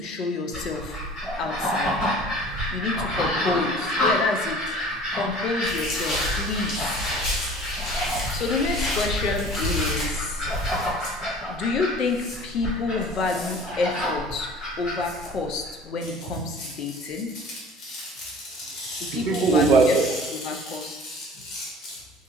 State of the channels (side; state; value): both; normal; correlation 0.45